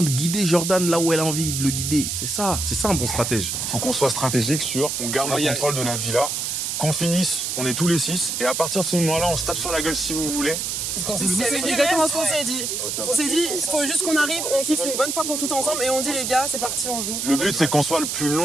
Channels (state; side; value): noise; right; hiss, 2 dB below the sound